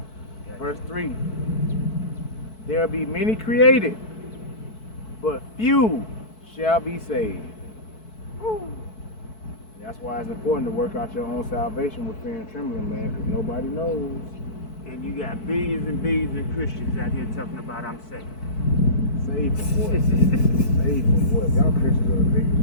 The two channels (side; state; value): right; late; 4.6 ms